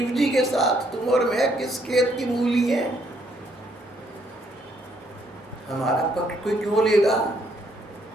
जी के साथ। तुम और मैं किस खेत की मूली हैं? हमारा पक्ष कोई क्यों लेगा?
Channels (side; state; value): both; normal; correlation 0.70